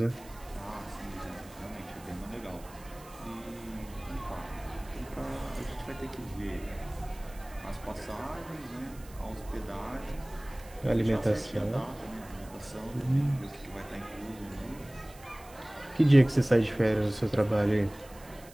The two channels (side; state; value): right; noise; hiss, 22 dB below the sound